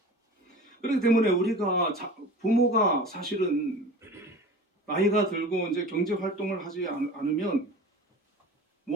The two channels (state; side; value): normal; both; correlation 0.37